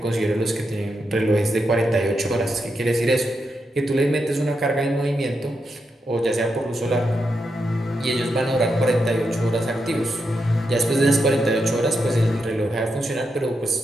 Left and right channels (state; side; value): normal; both; correlation 0.84